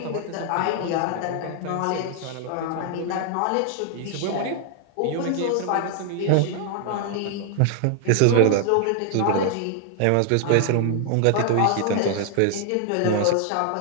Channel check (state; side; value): different; both; correlation 0.00